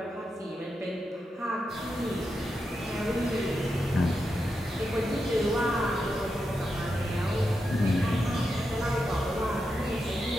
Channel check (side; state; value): both; normal; correlation 0.87